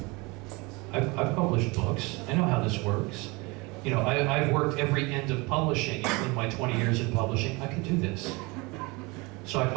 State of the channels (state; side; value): quieter; left; 25.8 dB